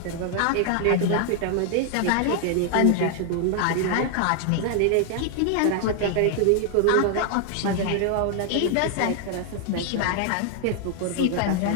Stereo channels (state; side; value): different; both; correlation 0.00